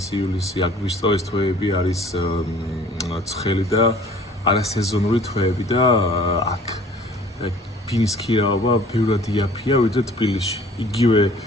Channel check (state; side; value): normal; both; correlation 0.51